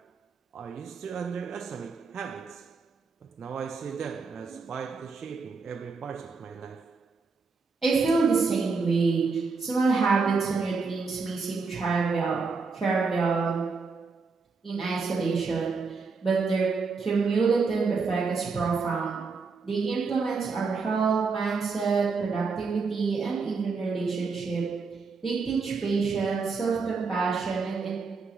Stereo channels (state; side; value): quieter; left; 4.7 dB